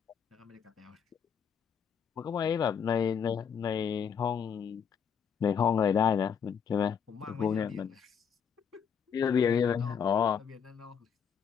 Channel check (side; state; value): right; quieter; 7.2 dB